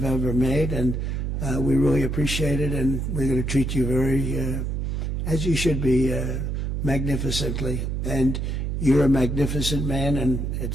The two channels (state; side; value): noise; right; hum, 1 dB below the sound